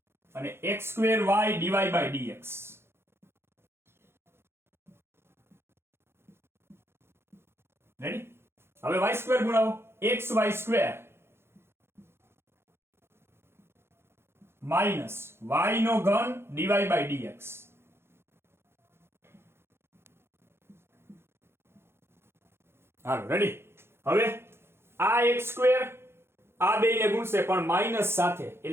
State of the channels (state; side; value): late; left; 0.12 ms